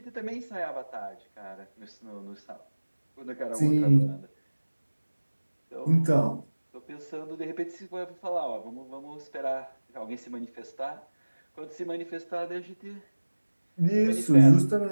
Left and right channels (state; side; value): inverted; both; correlation -1.00